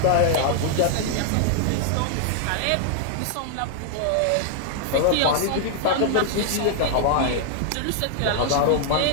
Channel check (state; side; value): different; both; correlation -0.01